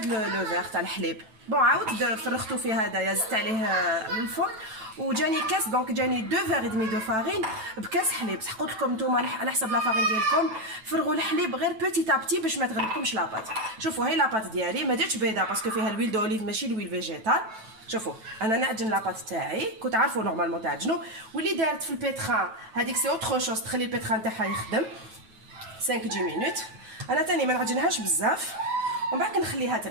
لو فيغ تاع الحليب. بون عاودت فرغتو في هذايا, زدت عليه الفوق, وجاني كاس. دونك جاني 2 verres et demi de farine بكاس حليب. صح قلت لكم نتوما على حسب لا فارين ديالكم فرغوا الحليب غير بوتي ابتي باش ما تغلبكمش لاباط. شوفوا هاي لاباط ديالي, ما درتش بيضه باسكو فيها الويل دوليف ماشي الويل فيجيتال. شوفوا انا نعجن لاباط تاعي, كنت عارفوا نورمالمون تعجنوا, واللي دارت في البيتران هذيك سي اوتر شوز, تخلي البيتران تاعها يخدم 5 10 مينوت. انا تاني ما نعجنهاش بزاف, ومن بعد نخليها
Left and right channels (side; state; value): left; late; 9.2 ms